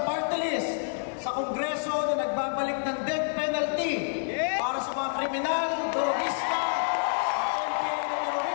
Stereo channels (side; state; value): right; silent; digital silence